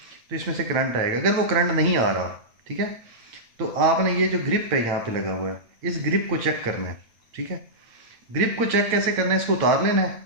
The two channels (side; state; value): left; late; 8.8 ms